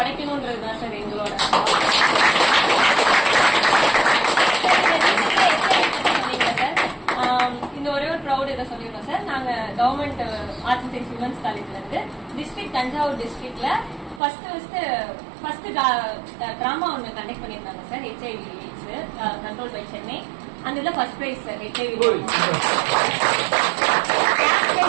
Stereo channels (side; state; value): left; drops out; at 14.2 s